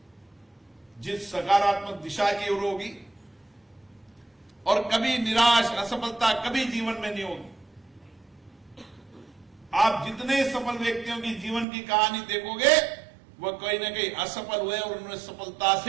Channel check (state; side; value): drops out; left; at 11.7 s